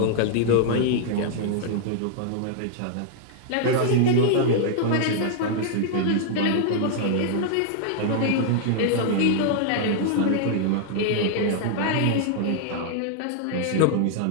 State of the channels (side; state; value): both; different; correlation -0.01